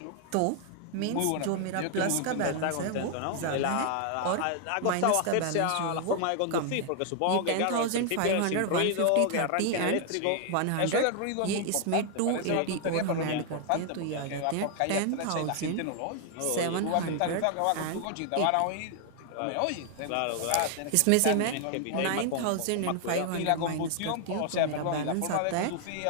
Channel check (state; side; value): different; both; correlation 0.00